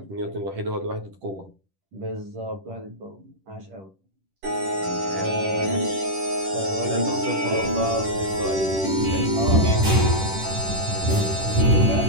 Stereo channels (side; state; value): left; late; 10 ms